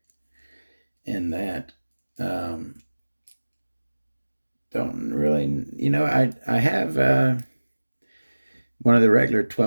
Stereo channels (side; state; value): both; inverted; correlation -1.00